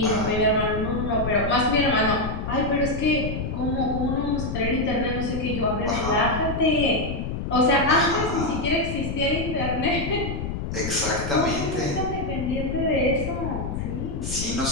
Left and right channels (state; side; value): noise; left; rumble, 4 dB below the sound